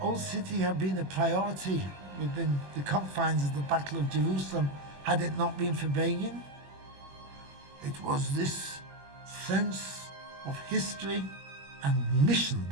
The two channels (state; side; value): late; left; 21 ms